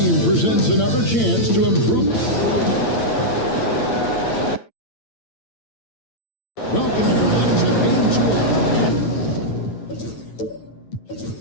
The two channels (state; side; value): late; right; 9.0 ms